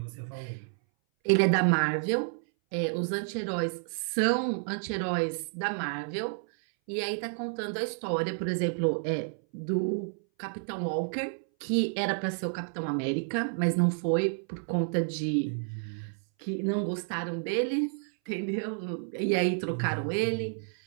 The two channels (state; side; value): silent; left; 58 dB below the other